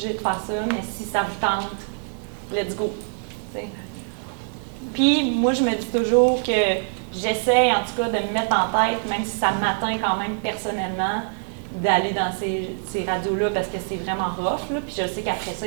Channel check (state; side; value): silent; left; digital silence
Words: de faire ça, mais si ça vous tente, let's go. T'sais. Puis moi, je me dis toujours que j'essaie en tout cas de me mettre en tête, même si ça m'atteint quand même personnellement, d'aller dans ces radios-là parce que c'est vraiment rough. Là. Puis je sais qu'après ça,